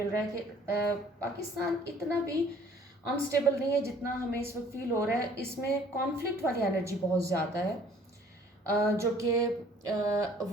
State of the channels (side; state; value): both; normal; correlation 0.56